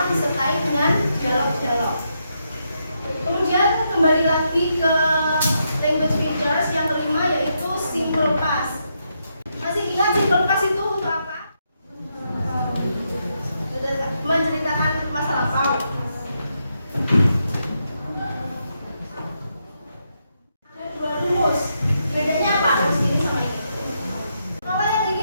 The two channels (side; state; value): both; inverted; correlation -0.81